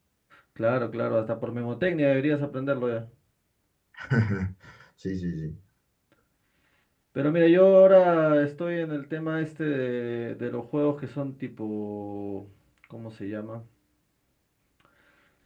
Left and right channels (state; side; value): identical; both; correlation 1.00